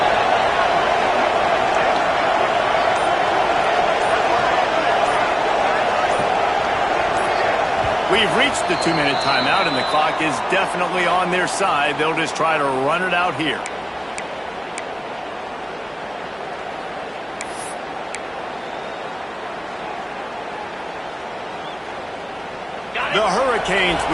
We've reached the 2-minute timeout, and the clock is definitely on their side. They'll just try to run it out here. The Hurricanes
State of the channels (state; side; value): identical; both; correlation 1.00